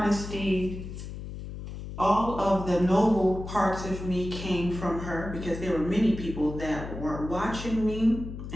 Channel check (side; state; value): left; noise; hum, 9 dB below the sound